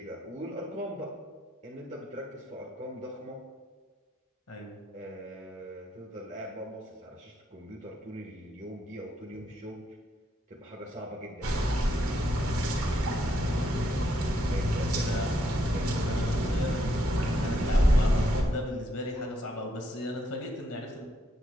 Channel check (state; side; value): normal; both; correlation 0.76